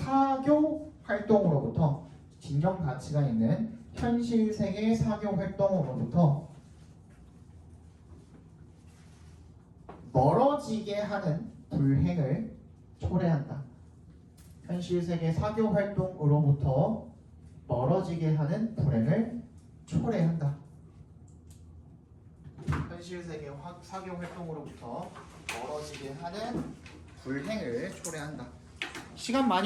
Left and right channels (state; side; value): identical; both; correlation 1.00